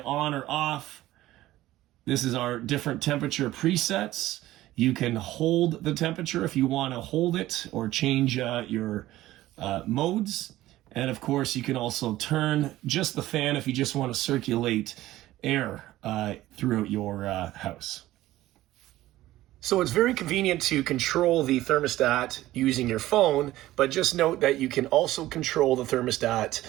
on or off. This is our different temperature presets. You can hold the temperature if you want to hold it or change your modes. And of course, you can also turn just the fan if you just want to circulate air throughout your house. So it's very convenient to control the thermostat using your phone, but just note that you can also control the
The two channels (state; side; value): quieter; left; 15.7 dB